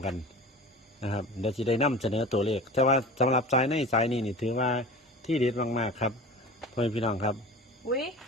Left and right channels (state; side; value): normal; both; correlation 0.36